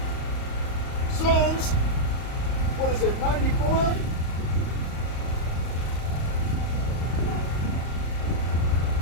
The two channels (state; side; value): late; right; 38 ms